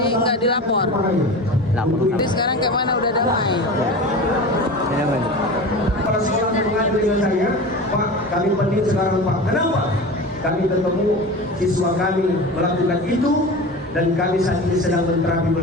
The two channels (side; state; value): both; normal; correlation 0.31